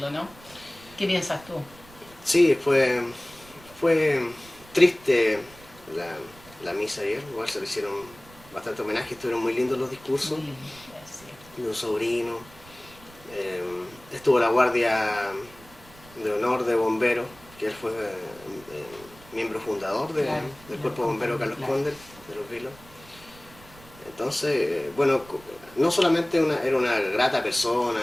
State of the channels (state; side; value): noise; right; rumble, 23 dB below the sound